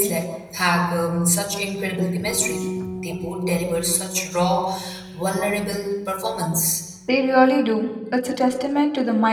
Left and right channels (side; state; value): both; identical; correlation 1.00